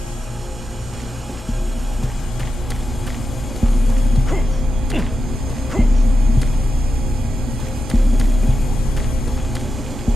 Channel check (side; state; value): both; normal; correlation 0.89